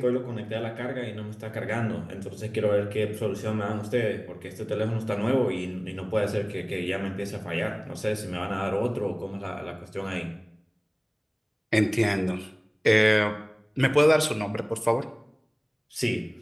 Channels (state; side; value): identical; both; correlation 1.00